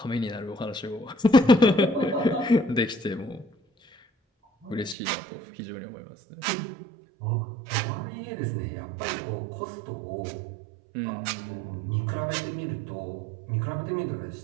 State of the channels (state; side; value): drops out; left; at 5.0 s